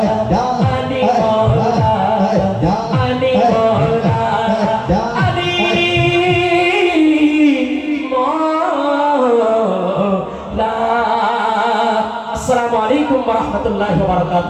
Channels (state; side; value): identical; both; correlation 1.00